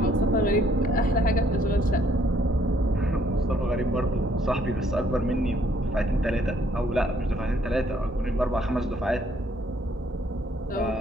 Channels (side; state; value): both; normal; correlation 0.66